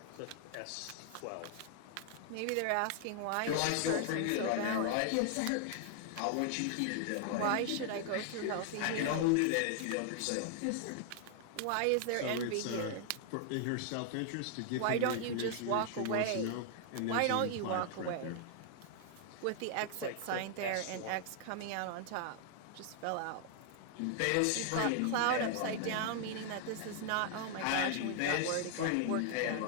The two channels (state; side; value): different; both; correlation 0.00